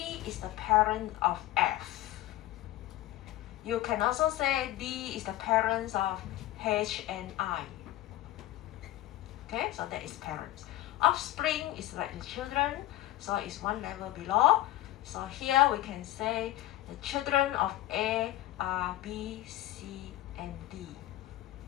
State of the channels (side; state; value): right; quieter; 15.4 dB